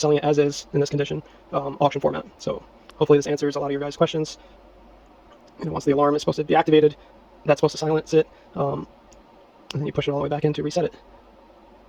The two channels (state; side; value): identical; both; correlation 1.00